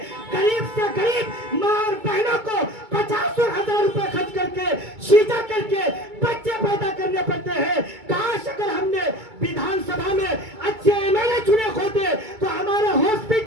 गरीब से गरीब माँ और बहनों को 50,000 रुपए खर्च करके सीधा करके बच्चे पैदा करने पड़ते हैं। काश अगर हमने विधानसभा में अच्छे एमएलए चुने होते तो हमारा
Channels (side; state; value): left; late; 2.2 ms